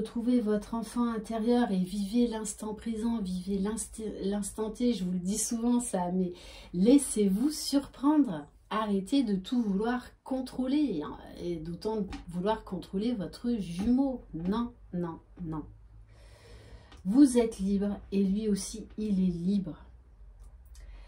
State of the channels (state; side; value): identical; both; correlation 1.00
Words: votre enfant intérieur et vivez l'instant présent, vivez l'instant T. Je vous le dis souvent ça, mais laissez-vous surprendre. Arrêtez de tout vouloir contrôler et d'autant vouloir contrôler votre jumeau. Non, non, non. Vous êtes libre et lui aussi, il est libre.